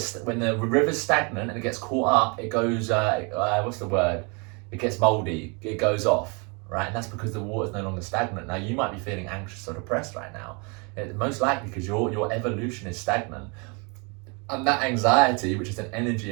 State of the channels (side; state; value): left; quieter; 32.4 dB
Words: river's stagnant and it gets caught up, it goes it gets moldy, it goes off, right? And that's because the water's no longer stagnant. Now you might be feeling anxious or depressed right now. It's most likely because your evolution is stagnant. And that anxiety, which is an energy